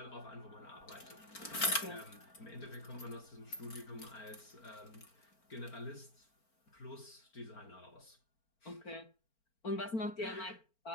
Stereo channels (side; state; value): right; late; 4.4 ms